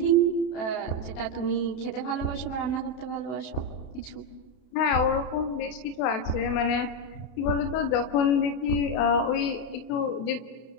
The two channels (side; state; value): right; late; 32 ms